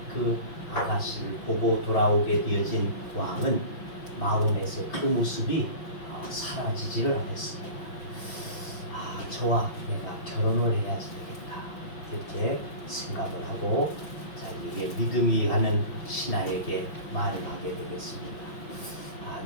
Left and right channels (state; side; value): late; right; 5.8 ms